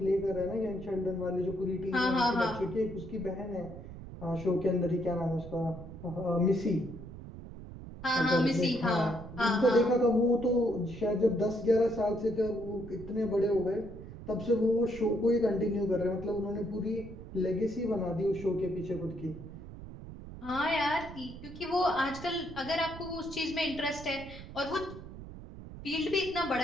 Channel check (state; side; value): noise; right; rumble, 13 dB below the sound